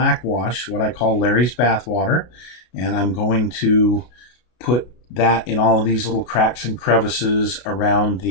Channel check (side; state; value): right; late; 33 ms